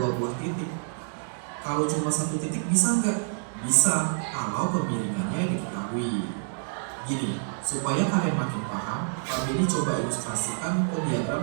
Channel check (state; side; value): silent; left; digital silence